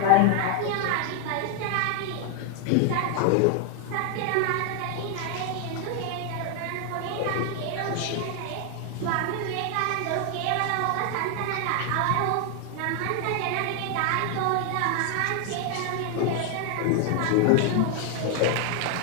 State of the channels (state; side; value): different; both; correlation 0.00